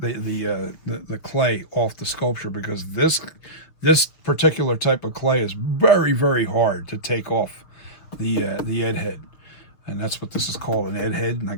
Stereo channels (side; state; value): right; late; 6.5 ms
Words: clay off the sculpture, because this particular type of clay is very hard to take off the Ed head, and that's what this is called, an Ed head, and I